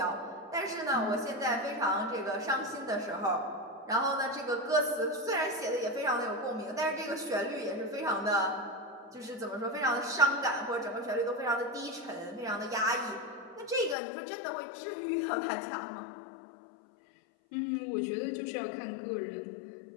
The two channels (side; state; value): right; drops out; at 14.0 s